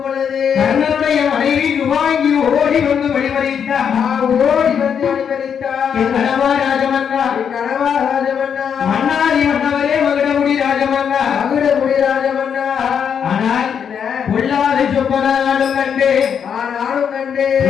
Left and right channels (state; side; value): quieter; right; 7.6 dB